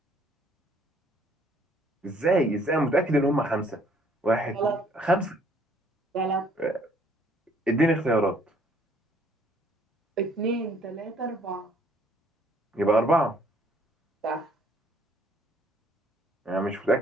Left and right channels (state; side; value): normal; both; correlation 0.62